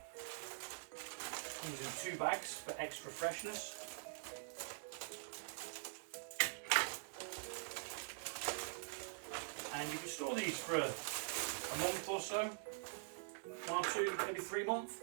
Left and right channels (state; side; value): silent; left; digital silence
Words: Using 2 bags for extra freshness. And you can store these for a month or so, 1 or 2, maybe 3 months.